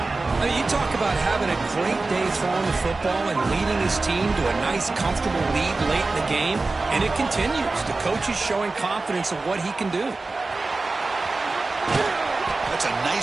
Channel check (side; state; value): left; quieter; 3.5 dB